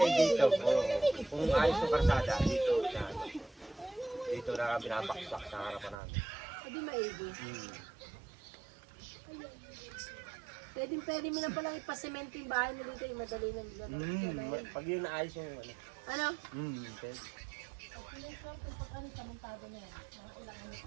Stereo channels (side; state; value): left; drops out; at 6.0 s